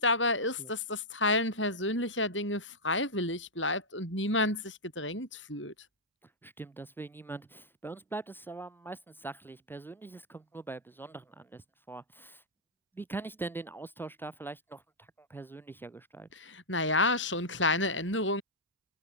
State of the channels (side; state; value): both; normal; correlation -0.09